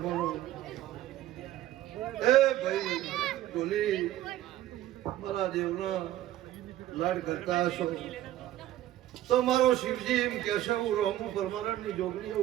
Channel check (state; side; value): quieter; left; 13.8 dB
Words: એ ભાઈ ઢોલી મારા દેવના લાડ કરતા હશો તો મારો શિવજી એમ કહેશે હું રોમું પરમાનંદની જોગણી